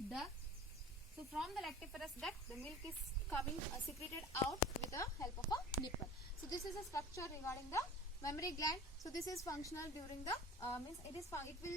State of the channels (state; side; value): normal; both; correlation 0.40